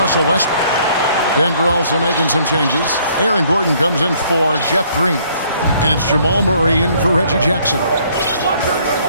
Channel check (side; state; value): both; inverted; correlation -0.63